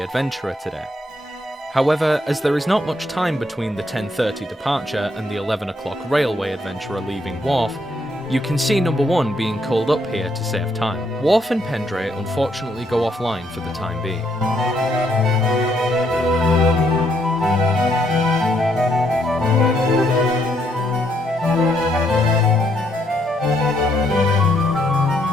Adventurer today. However, as there is not much time between the 10:30 departure and the 11 o'clock Railway Adventurer leaving Wharf, you can see number 1 being called up here to save time. Wharf and Pendray unfortunately go offline for the time being.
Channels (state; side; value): normal; both; correlation 0.73